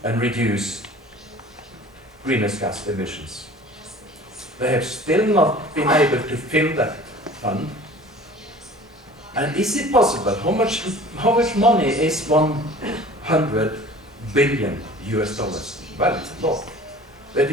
and reduce greenhouse gas emissions. They have still not been able to fill that fund. And is it possible? How much money is 100 billion US dollars? Well, it's a lot. But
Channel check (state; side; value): normal; both; correlation 0.45